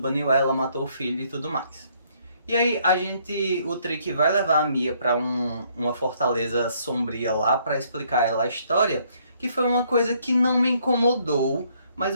ela, matou o filho e tudo mais. E aí o Trick vai levar a Mia pra uma fortaleza sombria lá pra explicar a ela a história, que foi uma coisa que não me incomodou,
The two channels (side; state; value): both; inverted; correlation -0.67